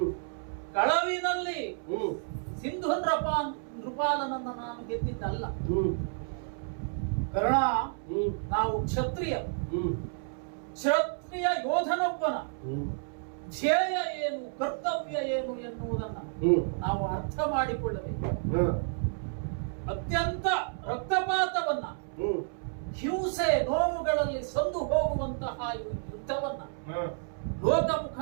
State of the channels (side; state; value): left; silent; 57 dB below the other